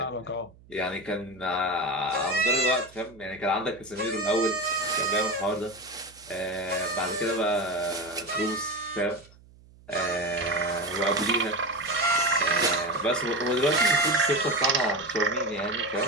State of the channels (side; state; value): right; noise; hum, 25 dB below the sound